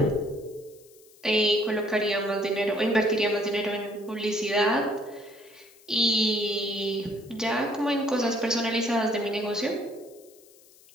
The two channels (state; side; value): noise; left; hiss, 26 dB below the sound